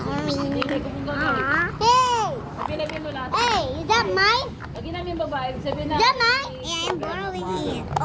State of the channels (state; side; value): identical; both; correlation 1.00